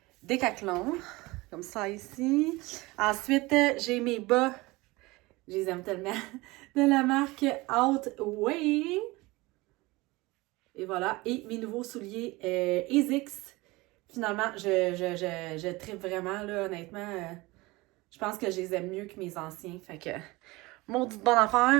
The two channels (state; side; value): quieter; left; 22.0 dB